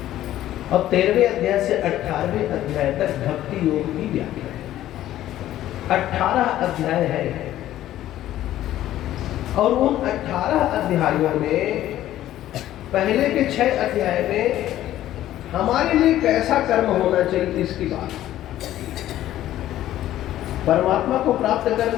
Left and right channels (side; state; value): right; quieter; 13.3 dB